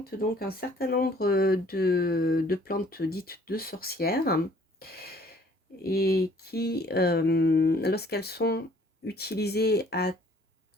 donc un certain nombre de plantes dites de sorcières et qui, lorsqu'elles sont utilisées à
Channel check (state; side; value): normal; both; correlation 0.58